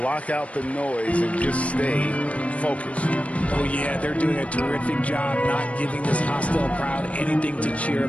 out the noise and just stay focused. Oh, yeah, they're doing a terrific job not giving this hostile crowd anything to cheer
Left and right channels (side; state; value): right; late; 0.065 ms